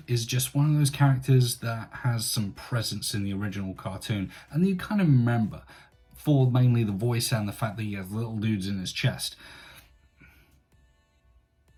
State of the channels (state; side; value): identical; both; correlation 1.00